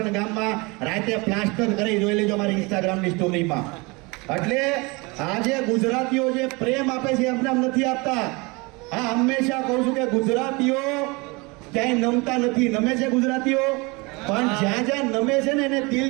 ગામમાં રાતે પ્લાસ્ટર કરી જોઈ લેજો મારી ઇન્સ્ટાગ્રામની સ્ટોરીમાં. એટલે આજે ગુજરાતીઓ જે પ્રેમ આપે છે એમને નથી આપતા. હા, હંમેશા કહું છું કે ગુજરાતીઓ ક્યાંય નમતા નથી. નમે છે ગુજરાતીઓ, પણ જ્યાં જ્યાં નમે છે ને એને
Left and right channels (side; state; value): left; quieter; 26.6 dB